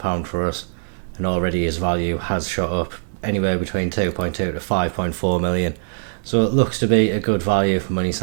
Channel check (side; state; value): left; silent; digital silence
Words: for us, and already his value has shot up anywhere between 2.2 to 5.4 million. So it looks to be a good value for money